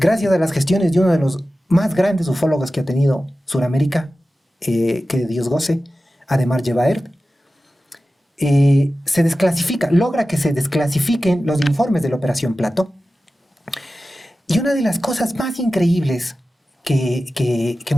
a las gestiones de uno de los más grandes ufólogos que ha tenido Sudamérica, que Dios goce, Ademar Yevaert, se desclasifica, logra que se desclasifiquen los informes de la Operación Plato. Y una de las cosas más increíbles que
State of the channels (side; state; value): both; normal; correlation 0.94